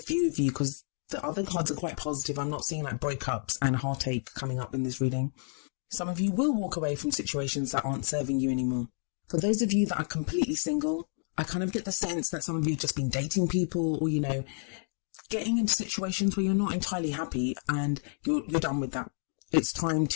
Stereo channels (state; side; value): silent; right; 58 dB below the other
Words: of you because the other cards are quite positive. I'm not seeing like breakups and heartache coming up in this reading. Some of you will walk away from situations that aren't serving you anymore. For those of you that are completely single, I kind of get the sense that some of you have just been dating people or, getting into situations where you're not entirely happy and you're done with that. It's time